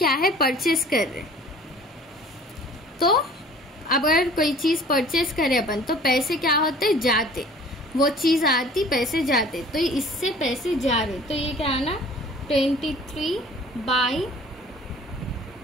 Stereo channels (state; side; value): normal; both; correlation 0.50